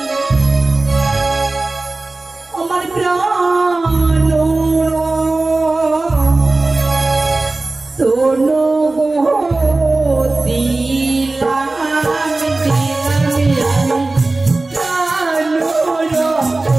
আমার প্রাণ তোনো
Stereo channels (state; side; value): quieter; left; 3.2 dB